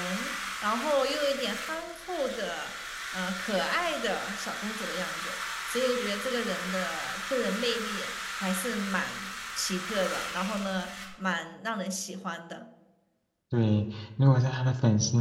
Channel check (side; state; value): both; identical; correlation 1.00